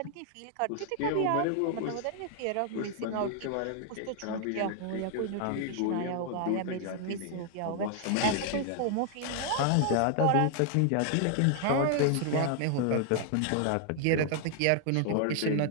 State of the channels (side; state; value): both; different; correlation 0.00